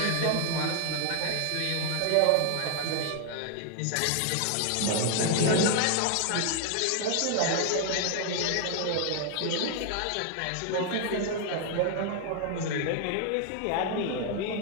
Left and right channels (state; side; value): different; both; correlation 0.00